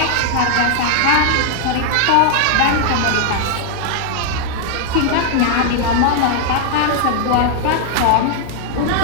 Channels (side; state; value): both; different; correlation 0.00